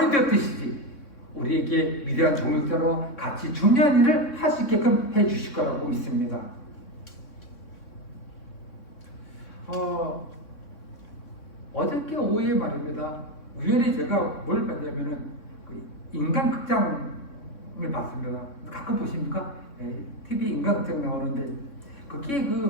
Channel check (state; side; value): late; right; 3.6 ms